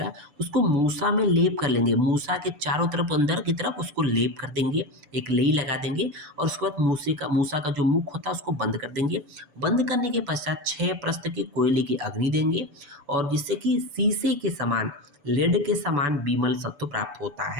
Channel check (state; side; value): late; left; 6.9 ms